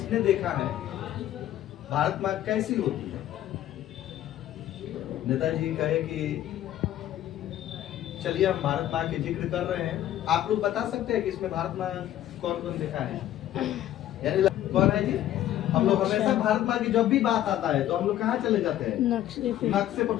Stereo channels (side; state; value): right; quieter; 12.7 dB